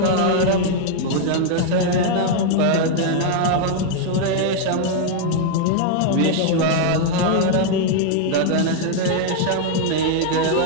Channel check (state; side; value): different; both; correlation 0.00